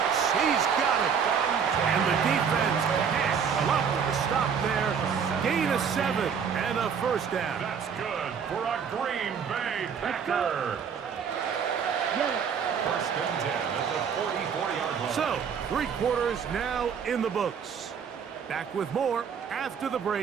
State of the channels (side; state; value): left; quieter; 6.9 dB